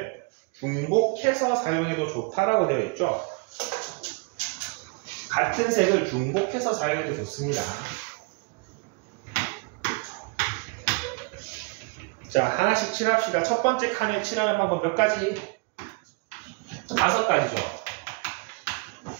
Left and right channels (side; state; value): left; quieter; 32.5 dB